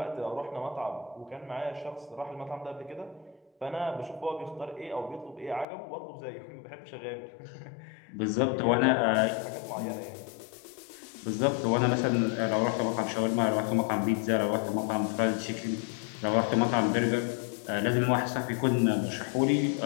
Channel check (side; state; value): right; drops out; at 5.7 s